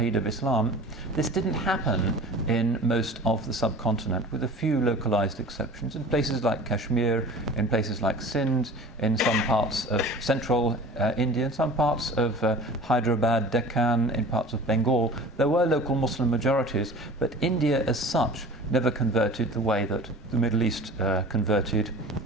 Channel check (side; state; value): both; normal; correlation 0.41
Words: of Islam, this didn't happen in most of the subcontinent, with a few localized exceptions in places like Kashmir, in places like Sindh, in some parts of central India, in some parts of Hyderabad, Deccan, in parts of Bengal. There were local Muslim majorities, but India as such never converted the way that the Middle East converted,